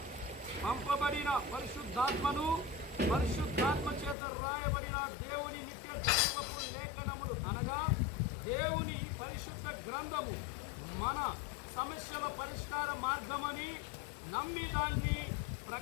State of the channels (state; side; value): drops out; right; at 4.2 s